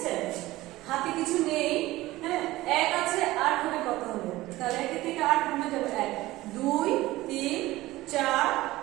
হাতে কিছু নেই, হ্যাঁ, 1 আছে, 8 হবে কত হবে? তাহলে 1 থেকে 8 কমে যাবে 1, 2, 3, 4,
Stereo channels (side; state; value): left; quieter; 17.8 dB